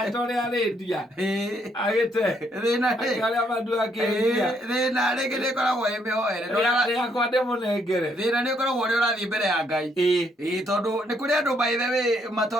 tole arendia agite thina aria mandu akiria thina ringi ni koragwo imihoere ria kwa ndemo nengere thina ni koragwo ri urathie mbere ya Ngai tondu ni kuri andu by the way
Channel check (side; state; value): both; normal; correlation 0.72